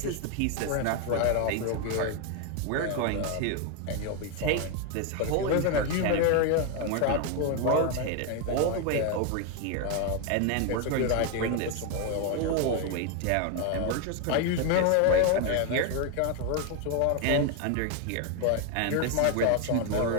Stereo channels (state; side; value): different; both; correlation 0.01